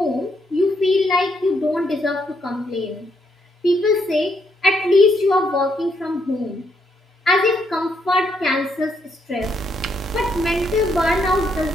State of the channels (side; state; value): both; normal; correlation 0.75